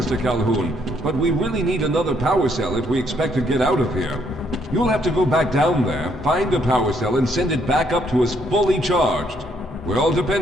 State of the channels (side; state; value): both; normal; correlation 0.70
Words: Calhoun, but we really need another power cell if we expect to get out of here. You'll have to go back down there, find a power cell, and send it back up to us fully charged. We're all